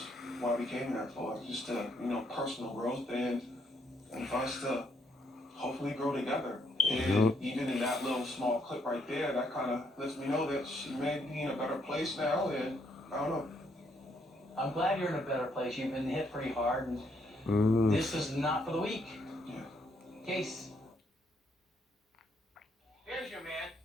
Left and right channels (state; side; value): normal; both; correlation 0.73